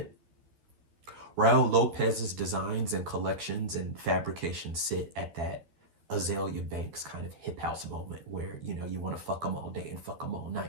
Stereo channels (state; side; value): late; left; 12 ms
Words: Raul Lopez's designs and collections and fabrications sit at that Azalea Banks kind of hip house moment where, you want to fuck them all day and fuck them all